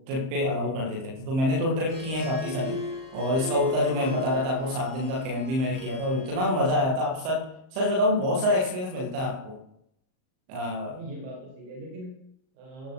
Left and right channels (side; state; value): left; late; 38 ms